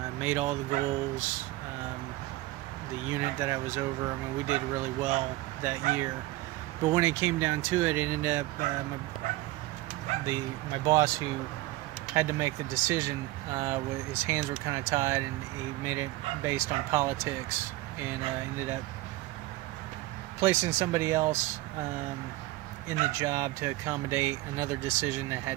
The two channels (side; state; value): left; quieter; 18.6 dB